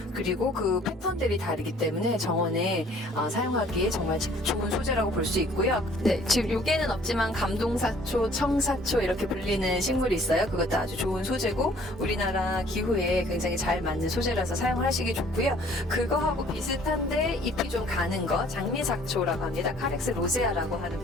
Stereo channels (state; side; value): normal; both; correlation 0.56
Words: 그리고 그 패턴들이 다르기 때문에 정원에 사용하기에 정말 좋은 소재라고 볼 수 있고요. 네, 지금 요게는 없지만 감동사초, 청사초 이렇게 불리는 식물이 있어요. 그것도 아주 좋은 소재고, 우리나라 기후에 굉장히 잘 맞는 소재라서 사용하시기 좋고요. 그거하고 비슷한데 잎이 좀 가는 거, 장미삭초라고 합니다. 카렉스 로세아라고 하는